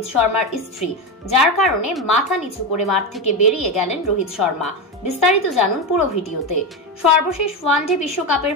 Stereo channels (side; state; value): both; normal; correlation 0.15